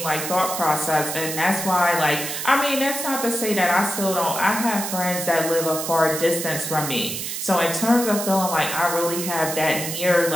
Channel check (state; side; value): noise; right; hiss, 5 dB below the sound